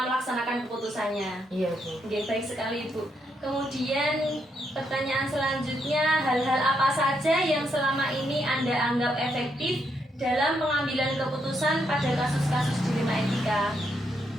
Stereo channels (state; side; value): normal; both; correlation 0.78